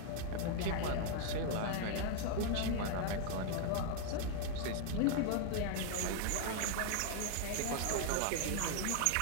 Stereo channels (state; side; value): different; both; correlation 0.00